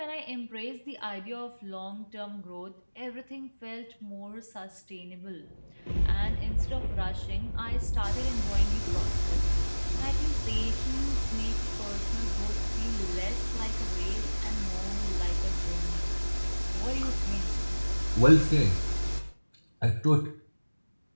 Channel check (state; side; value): inverted; both; correlation -1.00